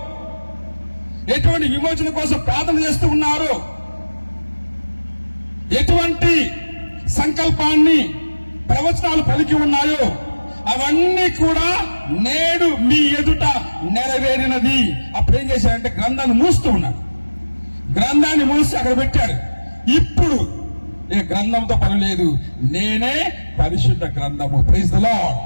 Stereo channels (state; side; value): inverted; both; correlation -1.00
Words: ఎటువంటి విమోచన కోసం ప్రార్థన చేస్తూ ఉన్నారు, ఎటువంటి సంకల్పాన్ని ప్రవచనాలు పలికి ఉన్నాయో అవన్నీ కూడా నేడు మీ ఎదుట నెరవేరినది. అప్పుడు ఏం చేశాడంటే గ్రంథాన్ని మూస్తూ ఉన్నాడు. గ్రంథాన్ని మూసి అక్కడ పెట్టాడు. ఇప్పుడు ఏ గ్రంథంతో పని లేదు, నేనే పరిశుద్ధ గ్రంథము. Praise the lord,